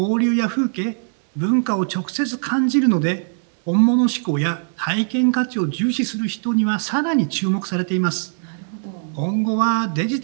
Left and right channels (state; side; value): silent; left; digital silence